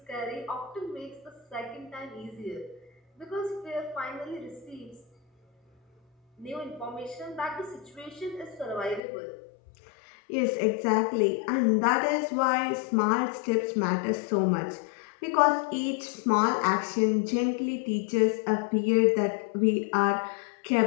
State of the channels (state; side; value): drops out; right; at 9.0 s